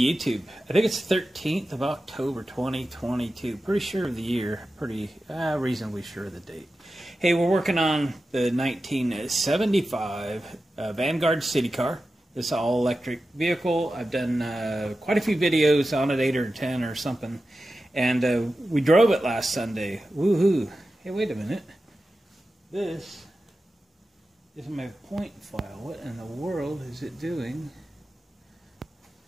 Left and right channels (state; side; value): normal; both; correlation 0.93